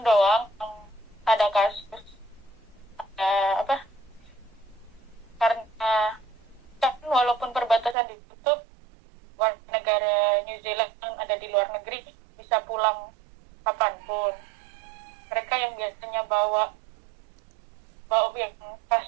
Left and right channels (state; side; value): drops out; left; at 8.0 s